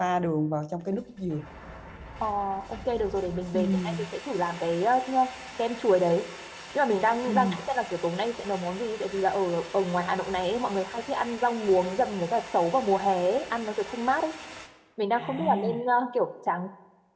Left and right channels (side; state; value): both; identical; correlation 1.00